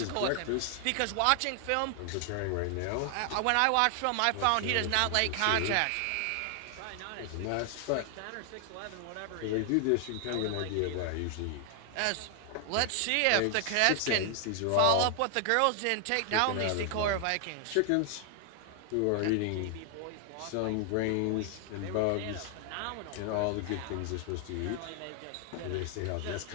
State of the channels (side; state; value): both; different; correlation 0.00